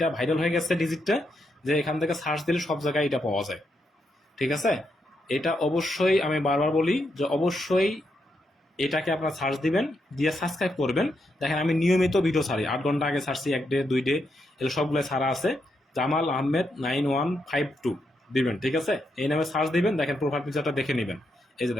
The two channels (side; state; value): both; normal; correlation 0.81